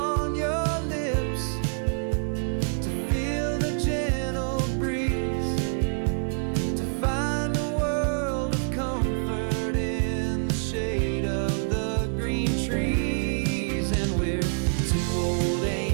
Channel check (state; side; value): silent; left; 61 dB below the other